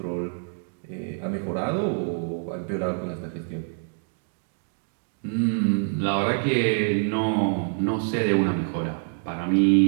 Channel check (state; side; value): silent; left; 57 dB below the other